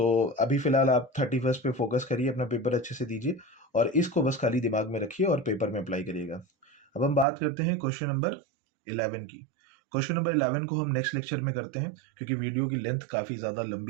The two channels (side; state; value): left; drops out; at 7.2 s